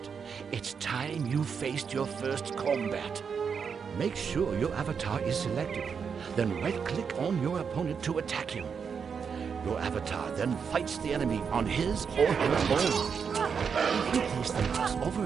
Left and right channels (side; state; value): left; quieter; 6.4 dB